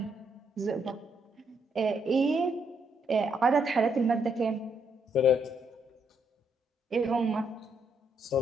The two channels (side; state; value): both; normal; correlation 0.75